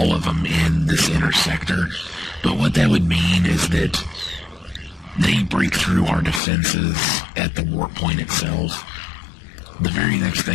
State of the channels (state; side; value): drops out; right; at 6.4 s